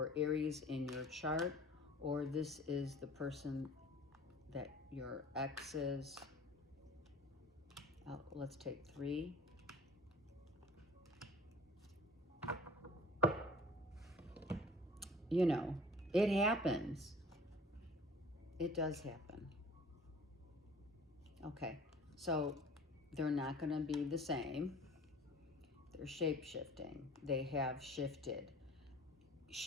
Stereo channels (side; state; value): both; normal; correlation 0.46